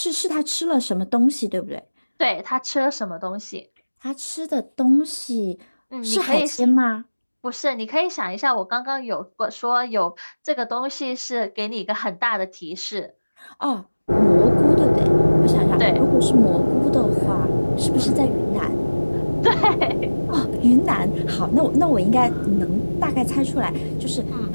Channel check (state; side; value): inverted; both; correlation -1.00